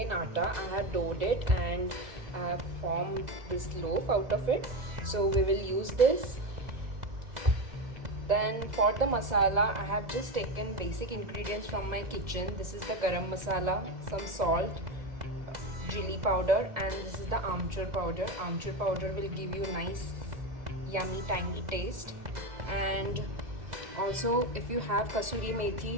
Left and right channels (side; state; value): left; late; 2.0 ms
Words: atta. I have doughed it and I have formed this loaf out of it. So we will use this. Then for the masala, I have just taken basic ingredients from my kitchen. This is the garam masala, some salt, chili powder, and this is the amchur powder. Amchur powder will give you nice yummy tangy taste. And also if you have kasuri